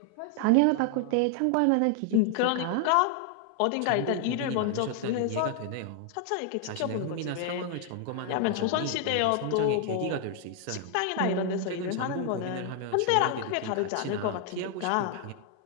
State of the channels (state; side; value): different; both; correlation 0.00